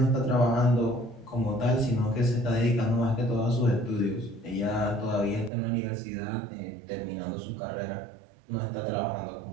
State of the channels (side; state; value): left; drops out; at 5.5 s